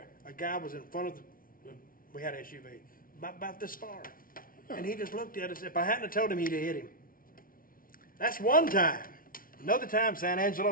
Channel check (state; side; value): late; right; 0.42 ms